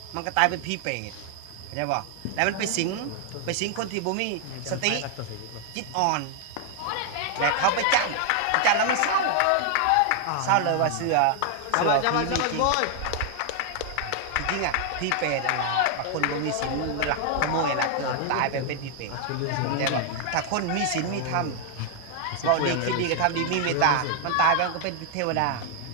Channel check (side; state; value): both; different; correlation 0.00